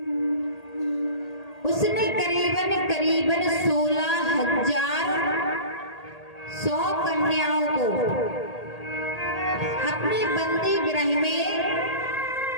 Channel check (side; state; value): right; late; 1.8 ms